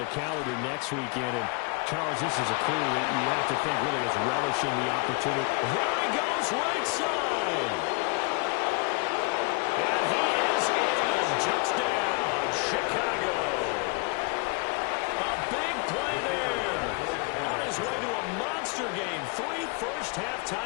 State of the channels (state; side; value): quieter; right; 31.1 dB